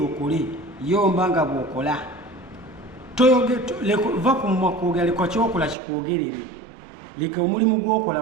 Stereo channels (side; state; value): left; drops out; at 5.8 s